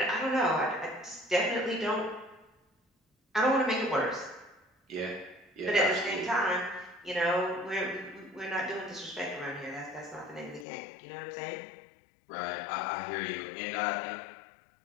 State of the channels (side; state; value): right; drops out; at 10.7 s